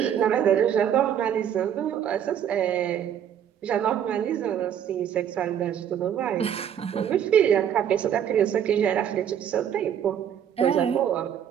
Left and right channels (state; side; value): quieter; left; 9.3 dB